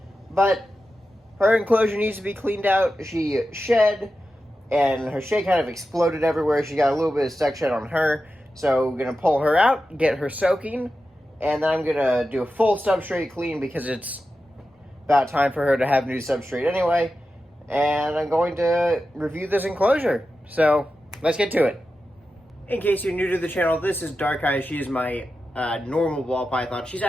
But her enclosure needs to be cleaned out. She shed, and her shed kind of exploded everywhere. She got a little bit of stuck shed on her, so we're going to pull her out, get her soaking, and then I'm going to do a full substrate clean because it's about time for her to have new substrate anyway. And I'm going to review this enclosure. So, let's get to it. In case you're new to the channel, this is Dark Eye. She is my normal ball python. She's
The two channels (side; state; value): both; normal; correlation 0.91